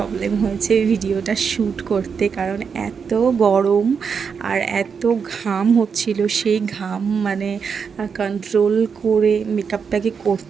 হয়েছে ভিডিওটা শ্যুট করতে, কারণ এত গরম আর এত ঘাম হচ্ছিল। সেই ঘাম মানে কন্ট্রোল করে মেকআপটাকে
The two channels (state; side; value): quieter; left; 6.2 dB